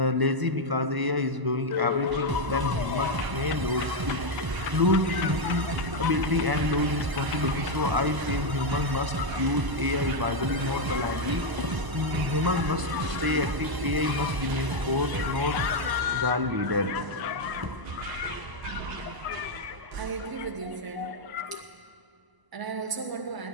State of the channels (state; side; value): late; left; 1.0 ms